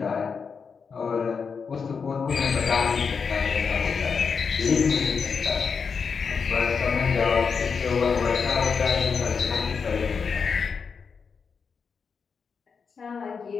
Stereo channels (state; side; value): quieter; right; 5.7 dB